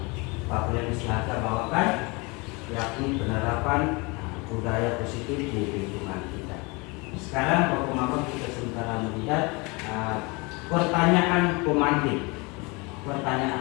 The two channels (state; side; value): quieter; right; 27.4 dB